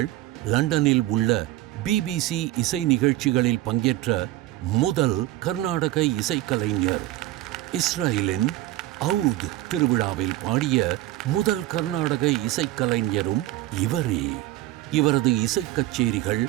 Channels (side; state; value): left; quieter; 16.1 dB